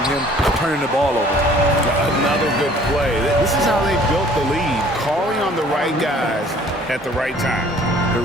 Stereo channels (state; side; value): normal; both; correlation 0.54